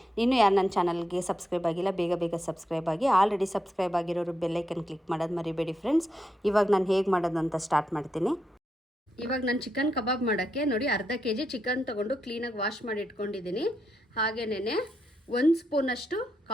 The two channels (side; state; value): both; normal; correlation 0.83